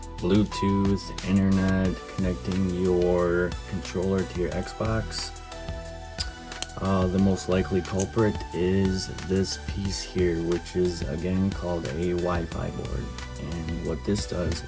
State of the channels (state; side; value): identical; both; correlation 1.00